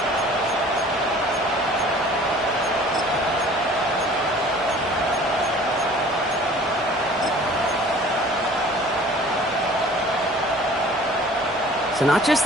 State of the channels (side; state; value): both; normal; correlation 0.49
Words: So not just